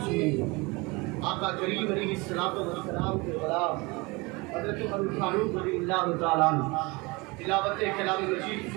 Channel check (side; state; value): left; quieter; 25.5 dB